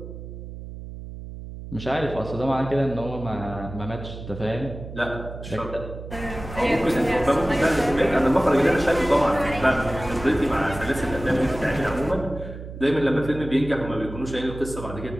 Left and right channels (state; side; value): noise; right; hum, 11 dB below the sound